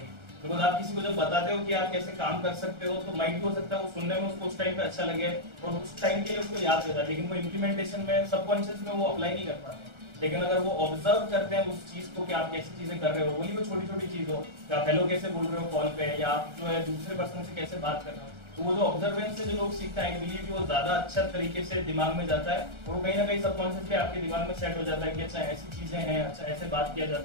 बिकॉज आप किसी को जब बताते हो कि आप कैसे काम कर सकते हो तो माइंड भी हो सकता है वो सुनने में उसको उस टाइम पे अच्छा लगे और उस टाइम के लिए उसको याद रहता है, लेकिन वो इम्प्लीमेंटेशन में सबकॉन्शियस में वो अप्लाई नहीं कर पाते। लेकिन अगर वो ऑब्जर्व करते हैं उस चीज को कि आप कैसी चीजें कर रहे हो, वही वो छोटी छोटी चीज हो, आप हेलो कैसे बोल रहे हो कॉल पे या आप जो है दूसरे पर्सन से कैसे बात कर रहे हो, तो वो जो ऑब्जर्वेंस से जो लोग सीखते हैं आई बिलीव कि वो ज्यादा अच्छा तरीके से दिमाग में जाता है और वो कहीं ना कहीं सबकॉन्शियसली आपके दिमाग में सेट हो जाता है कि अच्छा ऐसी चीजें हैं, अच्छा ऐसे बात किया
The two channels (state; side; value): late; left; 1.4 ms